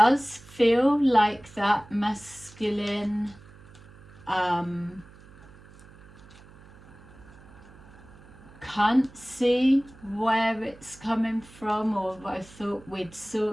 feel like that masculine can't see where it's coming from, or I thought we'd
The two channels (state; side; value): noise; right; hum, 22 dB below the sound